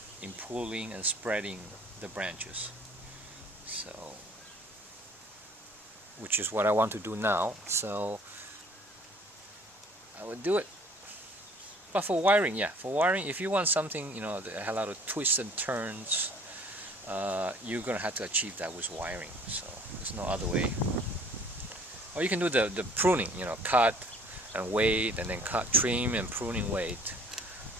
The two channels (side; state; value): both; normal; correlation 0.54